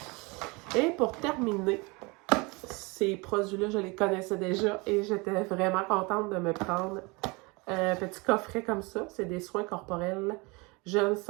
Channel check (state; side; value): quieter; left; 27.0 dB